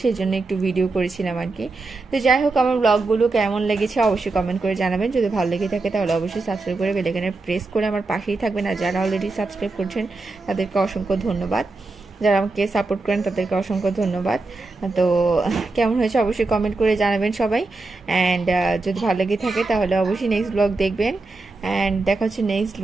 সেই জন্য একটু ভিডিও করেছিলাম আর কি। তো যাই হোক, আমার ব্লগগুলো কেমন লেগেছে অবশ্যই কমেন্ট করে জানাবেন। যদি ভালো লেগে থাকে তাহলে অবশ্যই সাবস্ক্রাইব করে বেল আইকনে প্রেস করে আমার পাশেই থাকবেন। আর যারা অলরেডি সাবস্ক্রাইব করছেন তাদেরকে অসংখ্য ধন্যবাদ, যারা আমাকে সাপোর্ট করেন তাদেরকে অসংখ্য ধন্যবাদ। তো কেমন হয়েছে অবশ্যই কমেন্ট করে জানাবেন সবাই। অ্যান্ড যদি ভালো লেগে থাকে তাহলে অবশ্যই নেক্সট ব্লগ দেখবেন। অ্যান্ড দেখা হচ্ছে নেক্সট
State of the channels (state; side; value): quieter; left; 3.5 dB